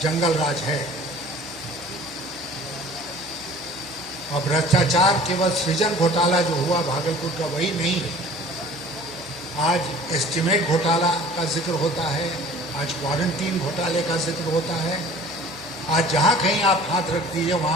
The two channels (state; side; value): noise; right; hum, 25 dB below the sound